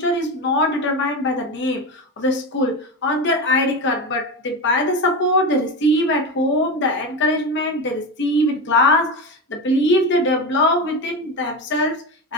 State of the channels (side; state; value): both; normal; correlation 0.20